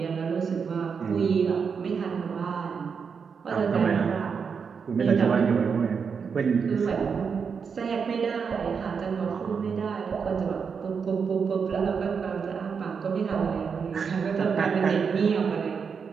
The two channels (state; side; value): quieter; left; 6.1 dB